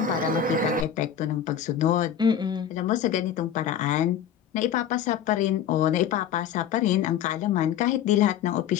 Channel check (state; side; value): quieter; right; 9.1 dB